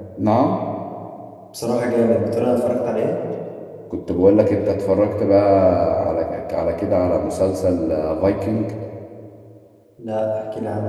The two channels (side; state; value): both; identical; correlation 1.00